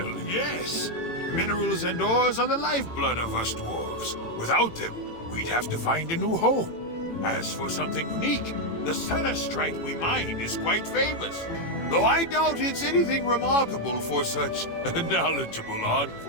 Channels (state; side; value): late; right; 18 ms